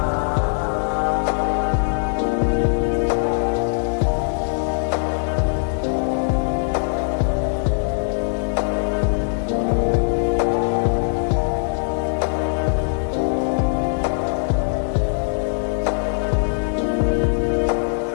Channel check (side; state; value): right; silent; 63 dB below the other